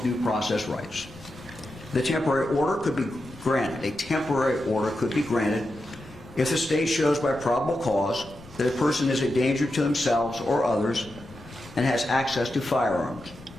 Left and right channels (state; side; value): noise; left; rumble, 21 dB below the sound